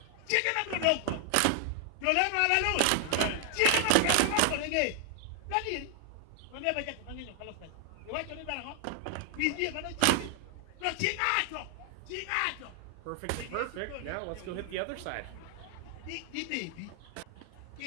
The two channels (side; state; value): both; different; correlation 0.00